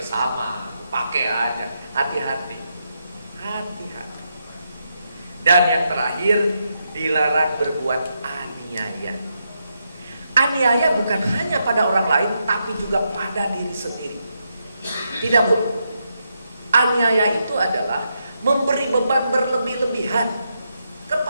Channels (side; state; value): both; inverted; correlation -0.82